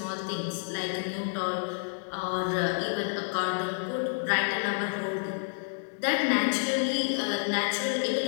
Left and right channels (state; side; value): silent; right; 58 dB below the other